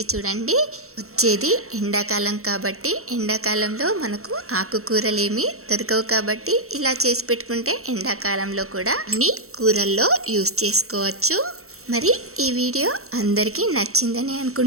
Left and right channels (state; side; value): late; left; 0.63 ms